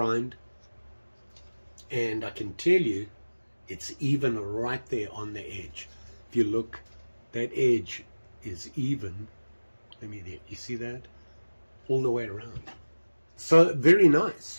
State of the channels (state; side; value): inverted; both; correlation -1.00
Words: and I can tell you it's even right there on the edge. If you look, that edge is even. Let me there. You see that? All the way around. So very